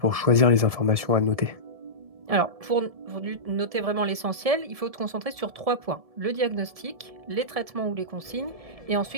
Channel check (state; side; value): late; left; 1.7 ms